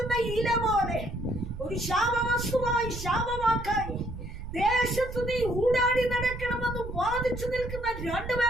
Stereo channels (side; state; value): right; noise; rumble, 9 dB below the sound